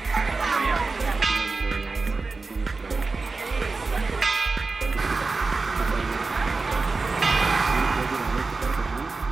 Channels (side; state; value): left; quieter; 3.9 dB